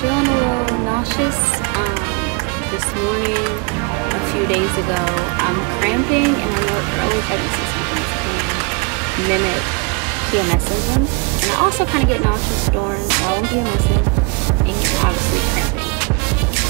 a little nauseous this morning, a few days ago. I'm cramping, and I know early pregnancy symptoms can mimic PMS symptoms, and I also kind of get nauseous during while I'm PMSing and obviously cramping.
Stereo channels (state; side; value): quieter; left; 31.1 dB